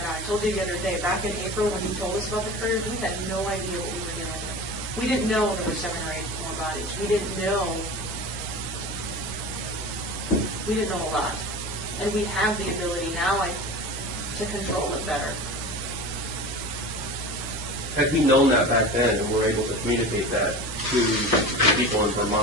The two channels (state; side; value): normal; both; correlation 0.32